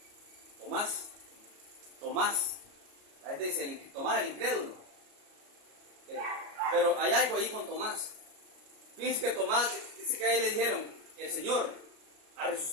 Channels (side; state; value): left; late; 33 ms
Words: Tomás. La gente dice, Tomás el incrédulo. Pero hay algo ahí con Tomás. Fíjense que Tomás, dice que a él le dijeron, el Señor ha